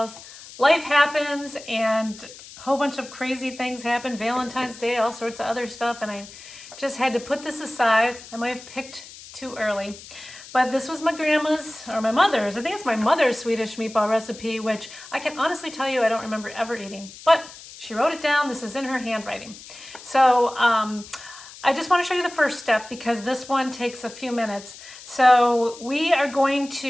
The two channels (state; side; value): noise; left; hiss, 17 dB below the sound